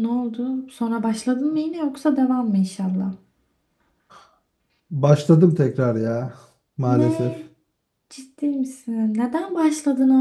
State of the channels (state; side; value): identical; both; correlation 1.00